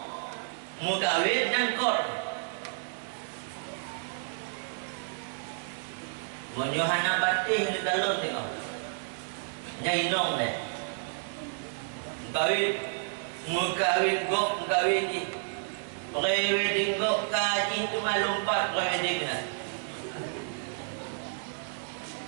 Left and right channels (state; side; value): silent; left; digital silence